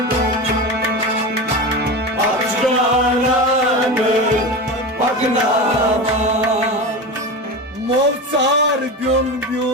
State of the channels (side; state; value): both; normal; correlation 0.25